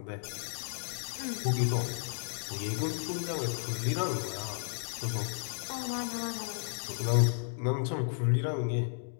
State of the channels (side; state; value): right; silent; digital silence